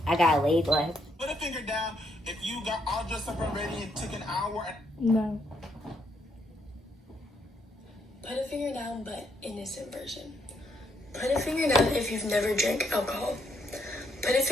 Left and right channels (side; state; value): both; normal; correlation 0.74